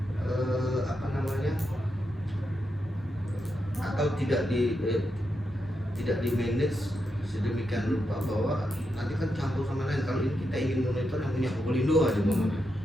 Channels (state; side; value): normal; both; correlation 0.85